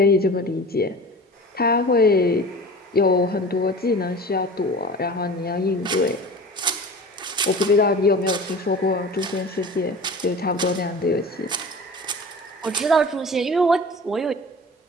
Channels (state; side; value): normal; both; correlation 0.38